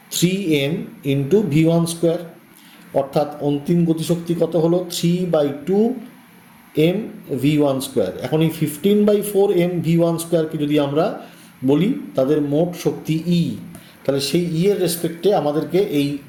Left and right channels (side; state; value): both; identical; correlation 1.00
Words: 3m into v1 square, অর্থাৎ অন্তিম গতিশক্তি কত হলো? 3/2 m v1 স্কোয়ার। এখন এই 15/4 m v1 স্কোয়ারকে যদি আমরা বলি তাদের মোট শক্তি ই, তাহলে সেই ই এর রেসপেক্টে আমাদেরকে এই